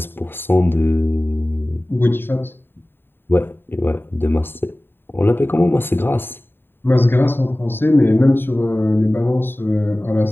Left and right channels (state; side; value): late; right; 0.10 ms